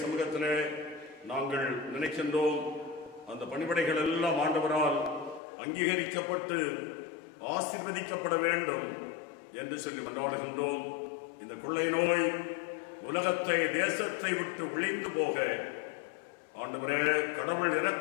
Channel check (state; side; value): drops out; right; at 5.4 s